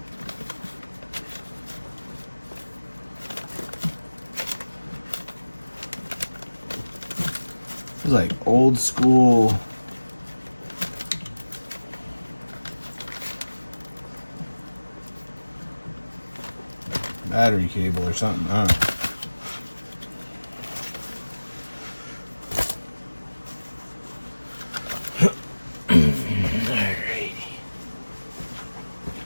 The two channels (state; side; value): inverted; both; correlation -1.00